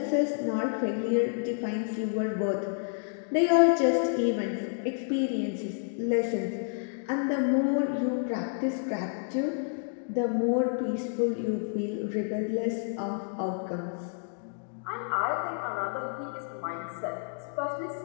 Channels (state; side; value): silent; right; digital silence